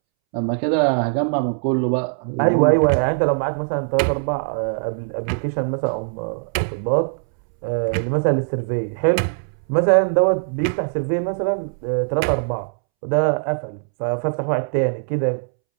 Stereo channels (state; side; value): silent; left; 65 dB below the other